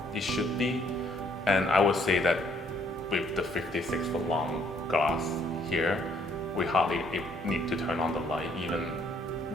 it should be. And I would say that with the 56-foot long glass here, we hardly need to turn on the light. Even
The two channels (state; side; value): normal; both; correlation 0.65